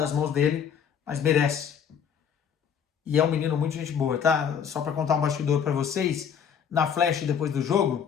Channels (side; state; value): right; quieter; 7.6 dB